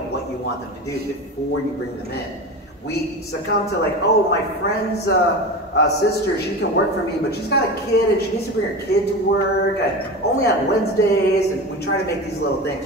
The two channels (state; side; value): normal; both; correlation 0.27